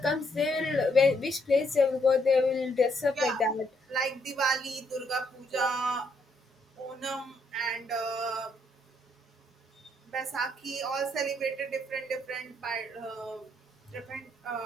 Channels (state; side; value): normal; both; correlation 0.73